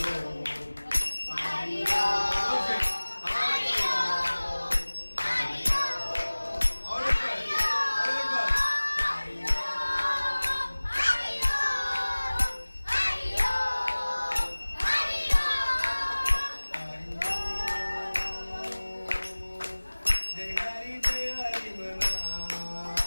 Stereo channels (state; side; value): inverted; both; correlation -1.00